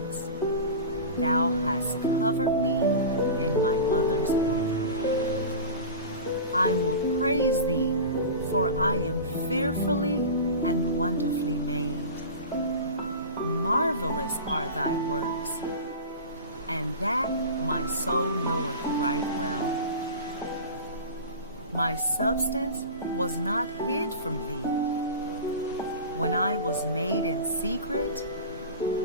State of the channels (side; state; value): both; inverted; correlation -0.31